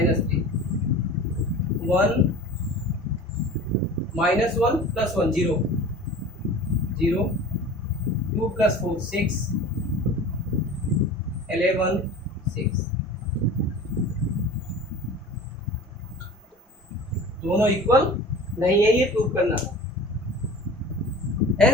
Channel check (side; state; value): both; normal; correlation 0.39